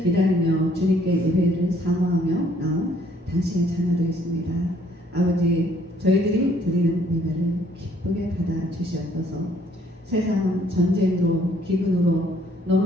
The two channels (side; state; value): both; normal; correlation 0.63